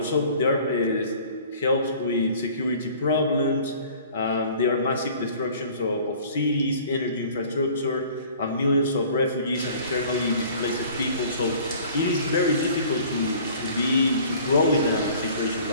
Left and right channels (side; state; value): both; inverted; correlation -0.50